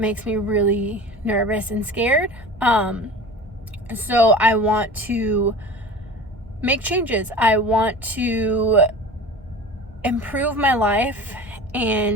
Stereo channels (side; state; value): both; normal; correlation 0.36